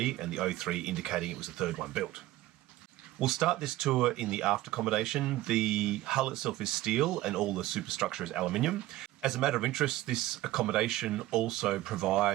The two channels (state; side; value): quieter; left; 16.2 dB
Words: and the 03 indicating it was the third one built. We'll start this tour in the aft accommodation. The hull itself is steel and all the superstructure is aluminium. As a matter of interest, this accommodation also